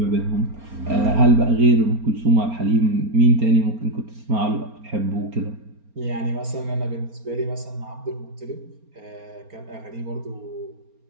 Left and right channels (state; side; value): late; left; 4.3 ms